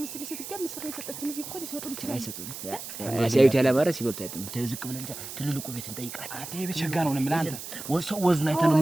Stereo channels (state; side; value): noise; right; hiss, 10 dB below the sound